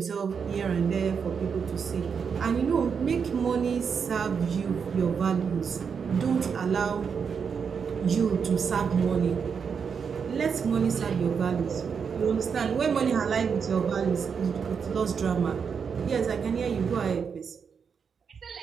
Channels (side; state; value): left; quieter; 6.4 dB